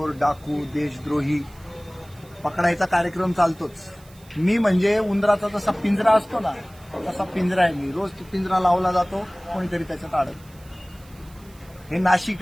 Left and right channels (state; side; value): noise; right; hiss, 26 dB below the sound